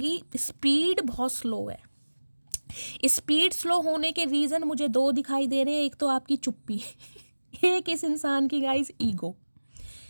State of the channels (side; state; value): both; inverted; correlation -1.00